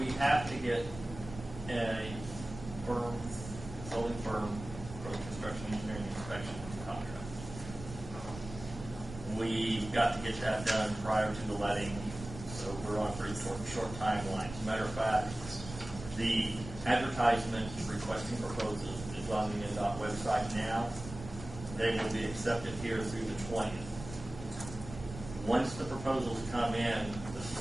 have to get a consulting firm for the construction engineering inspection contract. We've got to get that done prior to the letting, so we're on a pretty short timeline. As a matter of fact, the advertisement requesting proposals is on the NDOT website now. They will be accepted here through the 20th. Once the proposals come in, the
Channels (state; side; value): noise; right; rumble, 12 dB below the sound